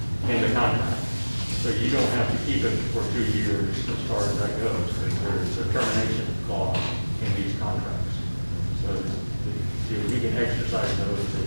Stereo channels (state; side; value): inverted; both; correlation -1.00